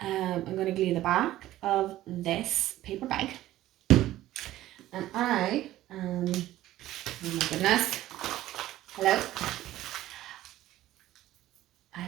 I'm going to glue the back of this paper bag. And oh my goodness, hello. I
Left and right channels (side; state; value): left; quieter; 14.7 dB